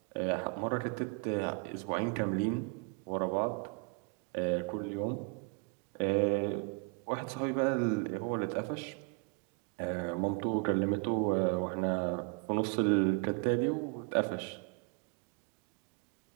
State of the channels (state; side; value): quieter; left; 32.6 dB